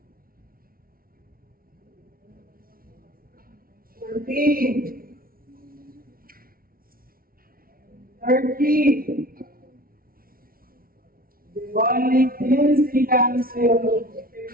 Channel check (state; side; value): late; left; 0.43 ms